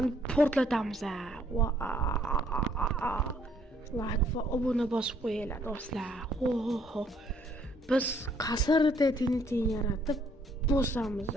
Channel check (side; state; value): both; normal; correlation 0.65